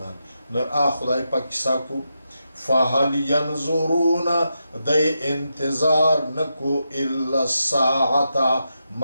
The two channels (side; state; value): both; inverted; correlation -0.86